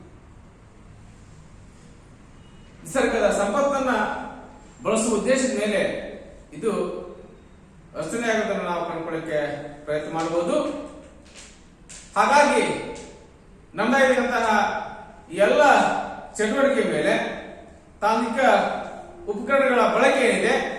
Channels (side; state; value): both; identical; correlation 1.00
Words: ನಿಸರ್ಗದ ಸಂಪತ್ತನ್ನ ಬಳಸುವ ಉದ್ದೇಶದ ಮೇಲೆ ಇದು ರಚನೆಯಾಗುವುದನ್ನು ನಾವು ಕಂಡುಕೊಳ್ಳಕ್ಕೆ ಪ್ರಯತ್ನ ಮಾಡಬಹುದು. ಹಾಗಾಗಿ ನಮ್ಮದಾಗಿರುವಂತಹ ಎಲ್ಲ ಚಟುವಟಿಕೆ ಮೇಲೆ ತಾಂತ್ರಿಕ ಉಪಕರಣಗಳ ಬಳಕೆ ಏನಿದೆ